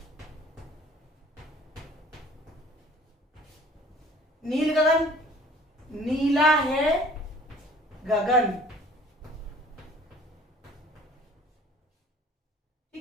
नील गगन, नीला है गगन।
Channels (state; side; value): normal; both; correlation 0.52